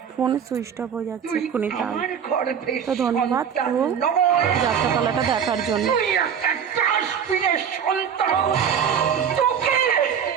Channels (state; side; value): quieter; left; 7.8 dB